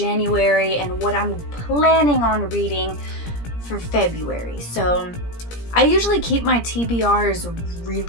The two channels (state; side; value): late; right; 17 ms